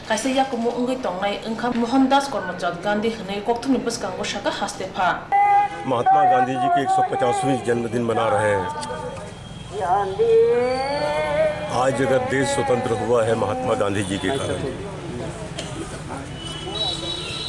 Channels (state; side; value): identical; both; correlation 1.00